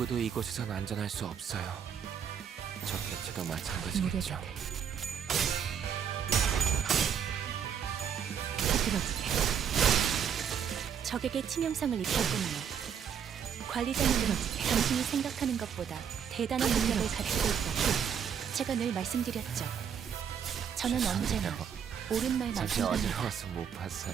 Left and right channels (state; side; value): quieter; left; 7.9 dB